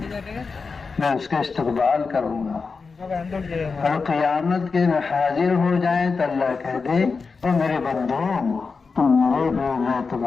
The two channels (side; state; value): right; quieter; 4.7 dB